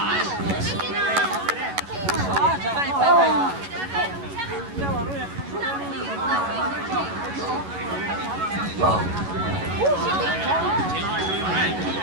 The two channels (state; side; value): late; left; 11 ms